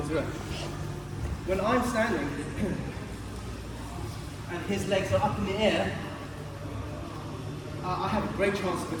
around. When I'm standing and his legs are up in the air, I have a great chance of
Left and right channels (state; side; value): identical; both; correlation 1.00